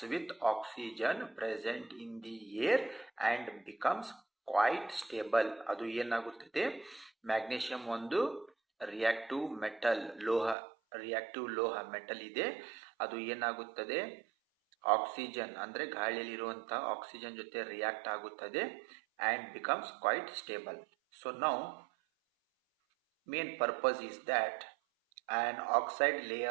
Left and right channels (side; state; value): left; drops out; at 10.6 s